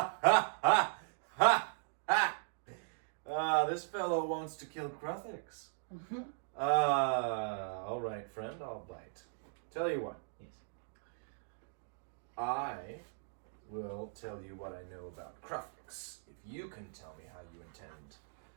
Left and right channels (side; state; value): left; silent; digital silence